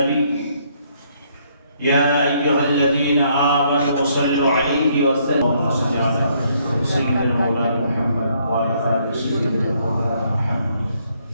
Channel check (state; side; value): inverted; both; correlation -0.69